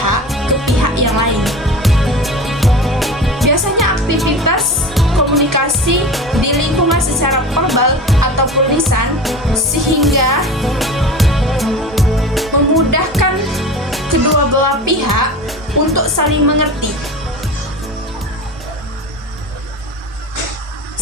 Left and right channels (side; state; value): both; normal; correlation 0.32